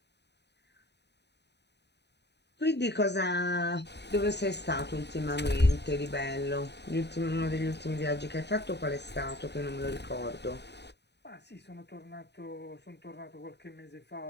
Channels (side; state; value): right; late; 0.50 ms